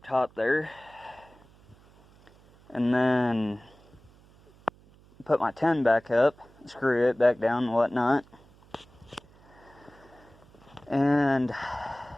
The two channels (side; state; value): right; noise; hum, 27 dB below the sound